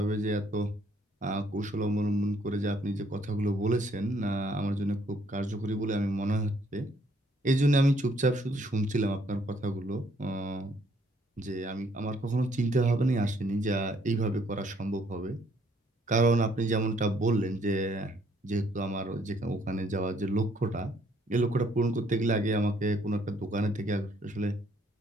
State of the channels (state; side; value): normal; both; correlation 0.66